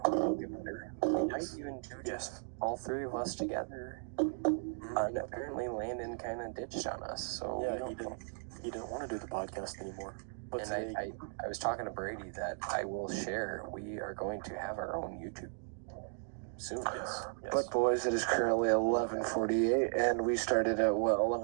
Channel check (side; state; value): left; silent; digital silence